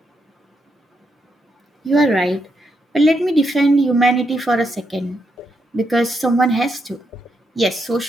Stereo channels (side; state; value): both; normal; correlation 0.81